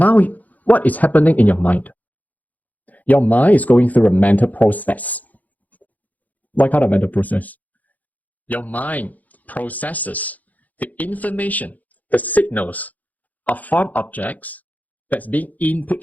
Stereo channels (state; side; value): late; right; 0.079 ms